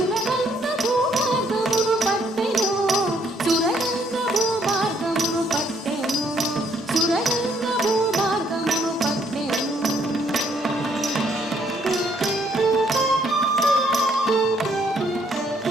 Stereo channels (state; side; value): normal; both; correlation 0.69